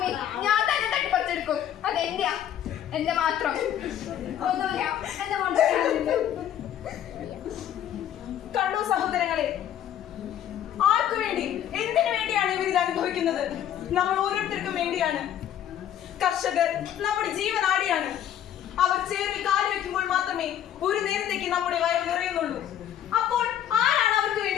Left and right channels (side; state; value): right; quieter; 10.6 dB